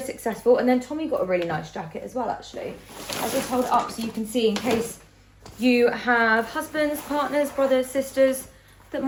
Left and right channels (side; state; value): both; identical; correlation 1.00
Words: And then Tommy got a really nice jacket as well, actually. I'll just hold it up so you can see, in case you have husbands, partners, brothers, sisters that